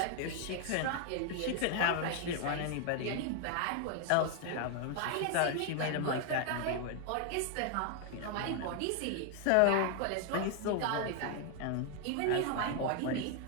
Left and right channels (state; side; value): different; both; correlation 0.00